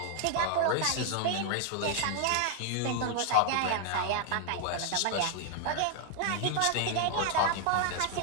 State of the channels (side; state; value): both; different; correlation 0.00